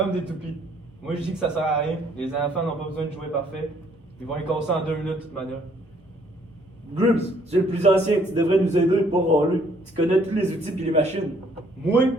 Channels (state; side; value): normal; both; correlation 0.64